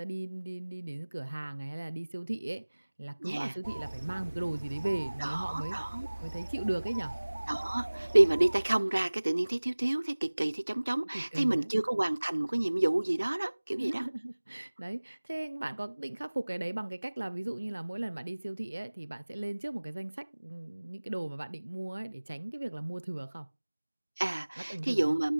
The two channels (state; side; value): inverted; both; correlation -1.00